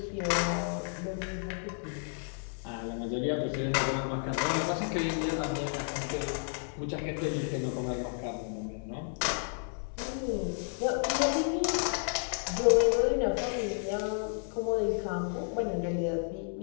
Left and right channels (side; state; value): right; silent; 57 dB below the other